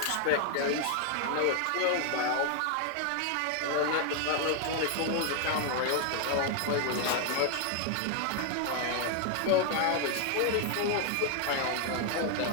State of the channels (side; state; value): both; different; correlation 0.00